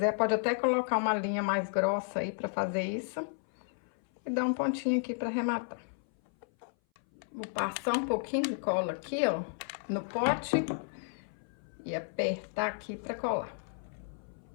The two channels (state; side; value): silent; right; 56 dB below the other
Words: pode até colocar uma linha mais grossa aí pra fazer isso. E dar um pontinho aqui pra arrematar. Vou passar um pouquinho de cola aqui, ó, no pote. E apertar aqui pra colar.